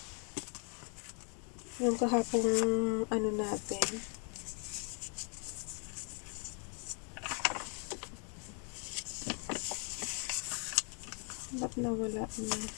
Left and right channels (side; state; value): right; quieter; 39.3 dB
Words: Yung kahapong ano natin. Ba't nawala na?